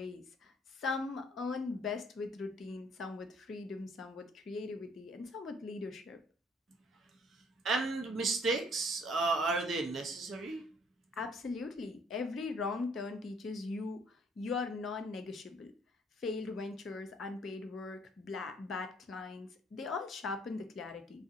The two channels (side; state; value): both; normal; correlation 0.61